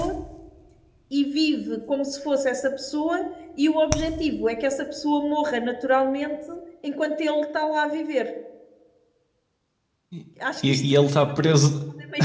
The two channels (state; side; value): identical; both; correlation 1.00